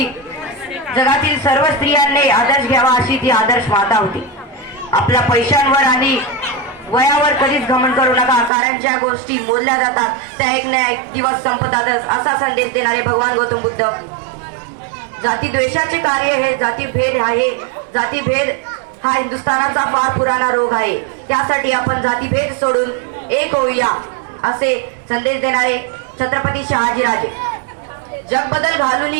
जगातील सर्व स्त्रियांनी आदर्श घ्यावा अशी ती आदर्श माता होती। आपल्या पैशांवर आणि वयावर कधीच घमंड करू नका, कारण ज्या गोष्टी मोजल्या जातात त्या एक ना एक दिवस संपतातच, असा संदेश देणारे भगवान गौतम बुद्ध। जातीद्वेषाचे कार्य हे जातीभेद आहे। जातीभेद हा हिंदुस्थानाचा फार पुराणा रोग आहे। त्यासाठी आपण जातीभेद सोडून एक होऊया असे संदेश देणारे छत्रपती शहाजीराजे। जग बदल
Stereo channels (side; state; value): left; drops out; at 8.5 s